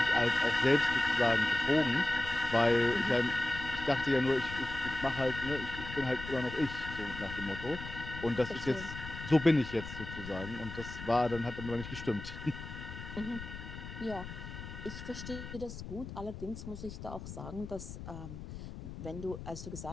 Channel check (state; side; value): noise; left; rumble, 11 dB below the sound